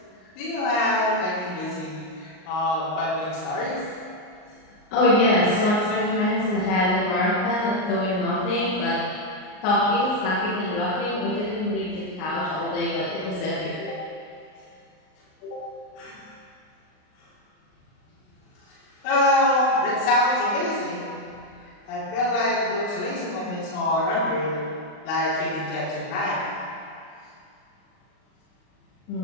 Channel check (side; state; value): right; late; 38 ms